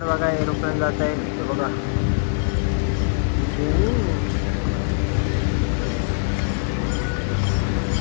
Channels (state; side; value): silent; right; digital silence